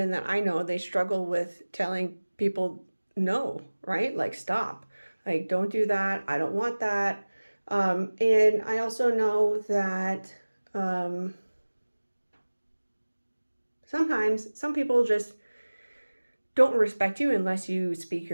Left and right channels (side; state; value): both; inverted; correlation -1.00